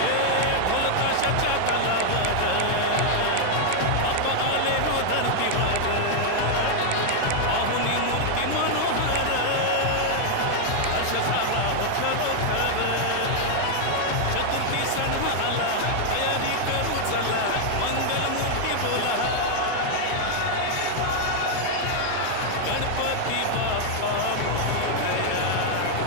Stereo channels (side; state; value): both; different; correlation 0.00